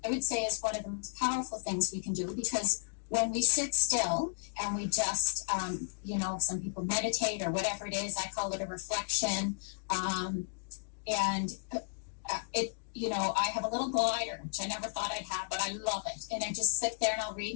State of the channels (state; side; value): silent; right; digital silence